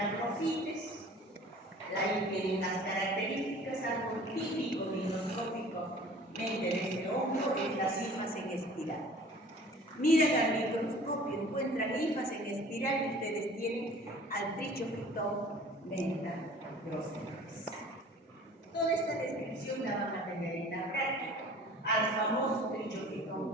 ahí tienen las características, algo típico microscópicamente de este hongo, es las hifas en espiral. Miran al microscopio, encuentran hifas en espiral y ustedes tienen al Trichophyton mentagrophytes. Toda esta descripción la van a tener en la práctica. Al famoso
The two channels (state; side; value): normal; both; correlation 0.47